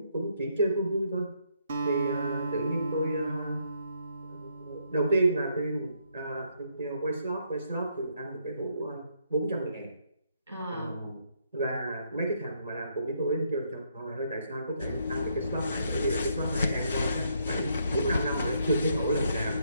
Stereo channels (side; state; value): both; inverted; correlation -0.73